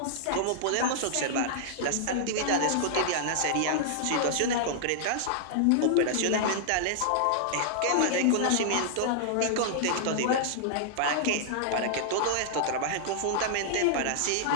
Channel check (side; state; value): both; different; correlation -0.01